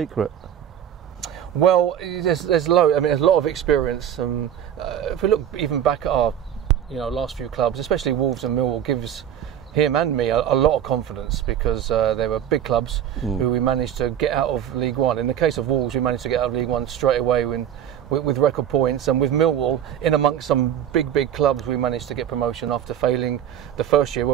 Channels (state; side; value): quieter; left; 9.9 dB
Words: Well, there's a lot of experience. If we look even back at our last few clubs, especially Wolves and Millwall, gives him and me a lot of confidence because they were big clubs who we managed to get out of League One. In the case of Wolves, we managed to get out of League One straight away with record points, and with Millwall, in amongst some big clubs, we managed to get promotion after failing the first year